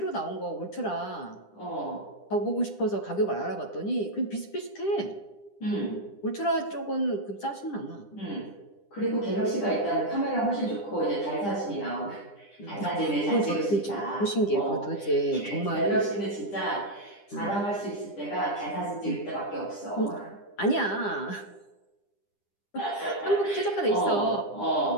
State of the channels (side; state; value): right; late; 10 ms